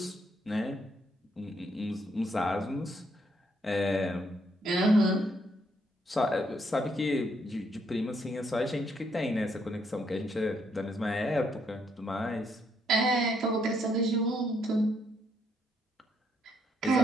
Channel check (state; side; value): normal; both; correlation 0.73